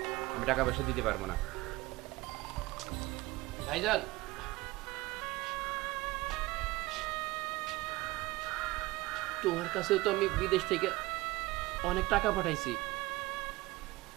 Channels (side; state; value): left; quieter; 20.3 dB